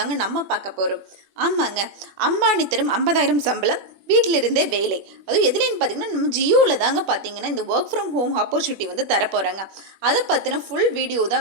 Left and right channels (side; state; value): left; late; 21 ms